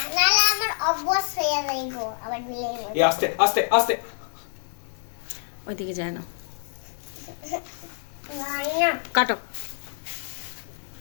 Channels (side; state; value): right; silent; 61 dB below the other